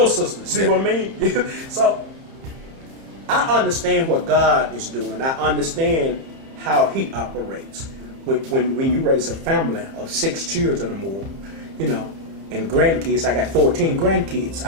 sisters. See what I mean? So I understand what God is doing. I understand how He operates. When you raise a family of 6 children or more, and grandkids, I got 14 grandkids.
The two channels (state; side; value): late; left; 31 ms